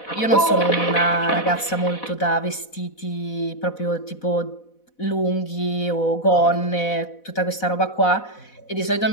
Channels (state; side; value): late; right; 4.1 ms